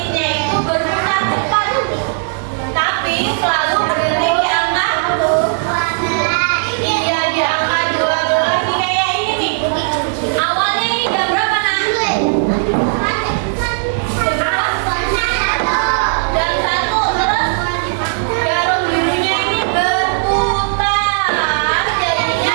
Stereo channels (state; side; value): silent; left; digital silence